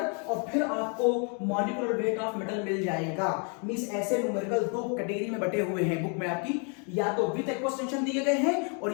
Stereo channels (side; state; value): right; quieter; 38.4 dB